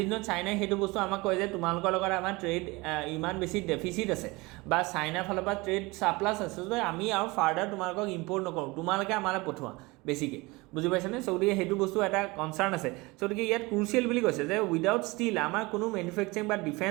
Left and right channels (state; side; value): quieter; left; 23.6 dB